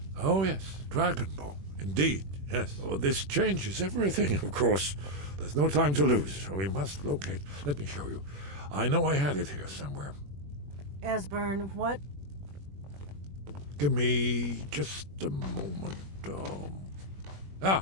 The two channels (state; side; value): late; left; 21 ms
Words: Oh, yes. Dragonbone. Indeed, yes. Oh, this changes everything, of course. There's no time to lose. We must locate... Let me show you. I know I had it here somewhere. Esbern, what... Give me just a moment.